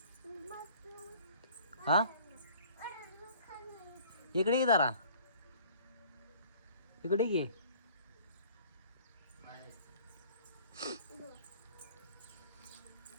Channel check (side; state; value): both; inverted; correlation -0.52